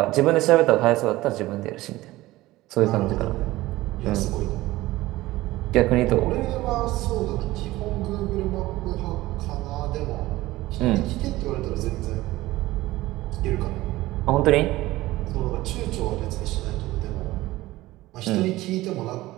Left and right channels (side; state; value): left; quieter; 17.8 dB